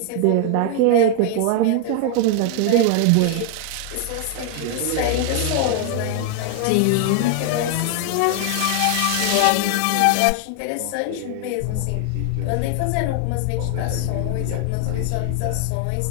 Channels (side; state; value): both; different; correlation 0.00